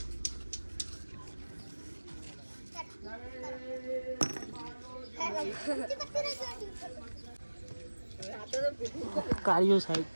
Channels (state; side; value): inverted; both; correlation -1.00